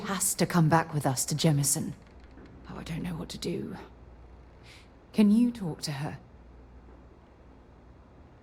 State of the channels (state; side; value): identical; both; correlation 1.00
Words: to come back with us to Jemison. Oh, I don't know what to do. Can you talk to her?